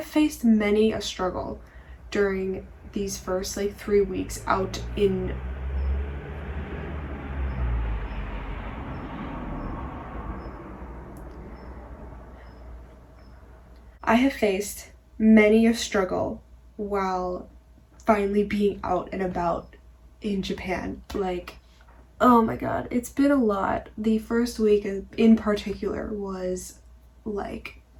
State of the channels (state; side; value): identical; both; correlation 1.00